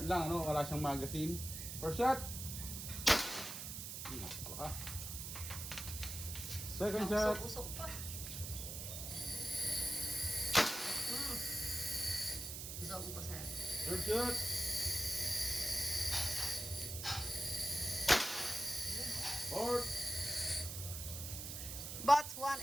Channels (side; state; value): right; noise; hiss, 6 dB below the sound